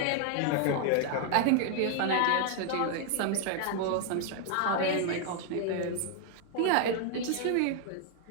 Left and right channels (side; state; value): both; different; correlation 0.00